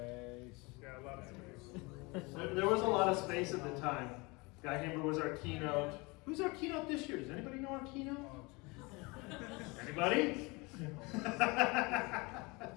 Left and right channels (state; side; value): quieter; right; 26.2 dB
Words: Yeah, a lot of space. There was a lot of space at the time. Guy Hamber was our keynote. Who's our keynote this year? Does anybody know our keynote? Anybody?